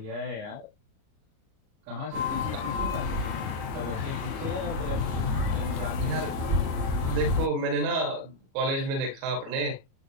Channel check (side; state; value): left; late; 37 ms